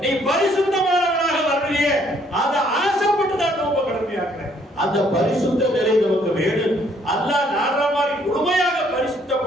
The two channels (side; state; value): both; normal; correlation 0.65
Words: நீ பரிசுத்தமானவனாக வருவியே, அதை ஆசைப்பட்டு தான் நோக்க கடமையாக்குறேன். அந்த பரிசுத்த நிலை நமக்கு வேணும். அல்லாஹ் நாடுற மாதிரி முழுமையாக